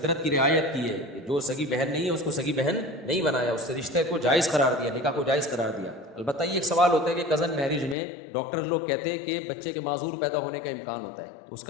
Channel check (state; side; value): drops out; right; at 8.0 s